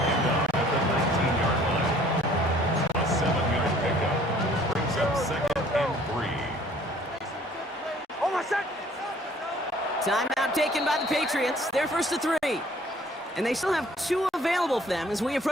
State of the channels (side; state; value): both; normal; correlation 0.56